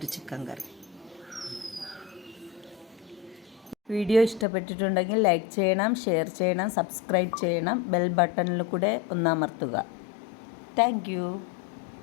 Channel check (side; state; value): right; drops out; at 4.5 s